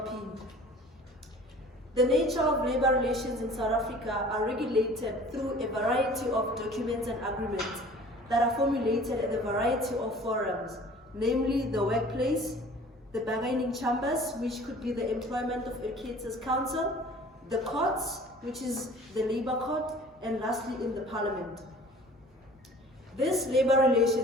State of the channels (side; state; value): both; normal; correlation 0.47